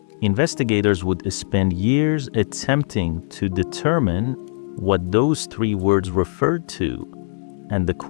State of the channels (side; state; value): right; silent; 65 dB below the other